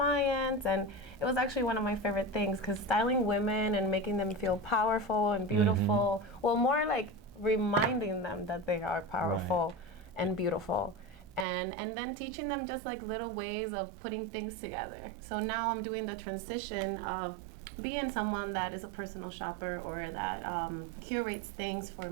and it was actually one of my favorite things because styling women and making them feel powerful and beautiful. Well, more like reminding them that they are powerful and beautiful. And then teaching them just like little ways of putting things together. So now I'm doing the transition of being someone that is a personal shopper or that curates things for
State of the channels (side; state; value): left; drops out; at 11.5 s